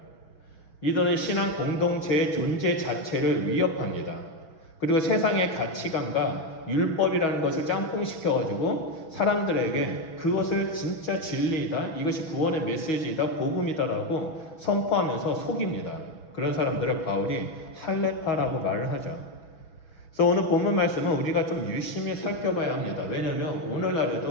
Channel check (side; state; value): right; late; 6.3 ms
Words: 이들은 신앙 공동체의 존재 자체를 위협합니다. 그리고 세상의 가치관과 율법이라는 것을 짬뽕시켜가지고 사람들에게 그것을 진짜 진리이다, 이것이 구원의 메시지이다, 복음이다라고 선포하면서 속입니다. 그런 사람들을 바울이 할례파라고 말을 하죠. 그래서 오늘 본문 말씀은 우리가 좀 유심히 살펴봐야 합니다. 왜냐하면